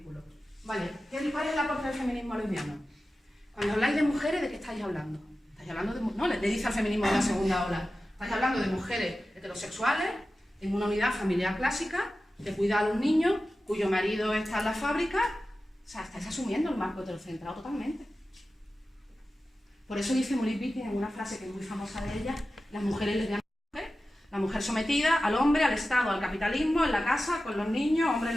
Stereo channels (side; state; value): both; normal; correlation 0.94